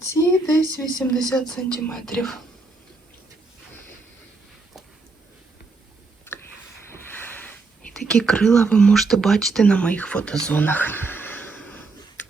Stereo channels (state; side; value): quieter; left; 3.7 dB